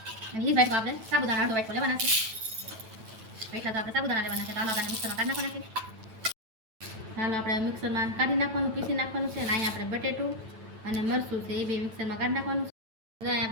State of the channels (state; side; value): late; left; 9.0 ms